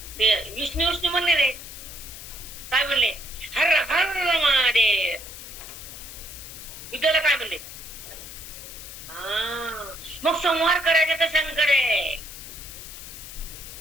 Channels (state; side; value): noise; left; hiss, 12 dB below the sound